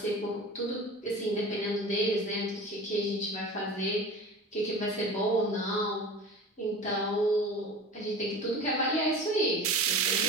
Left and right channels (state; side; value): normal; both; correlation 0.35